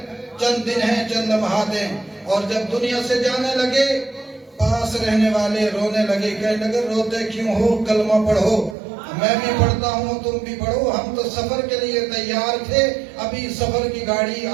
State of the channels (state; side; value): drops out; left; at 8.8 s